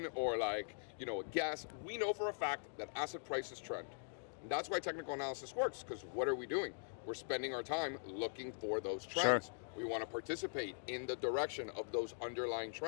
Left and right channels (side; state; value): right; silent; digital silence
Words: or like, a guess. We know for a fact that asset prices trend. And that's why technical analysis works, because what are we doing? We're spending our time looking for those trends. Sure. We want to participate in the direction of those underlying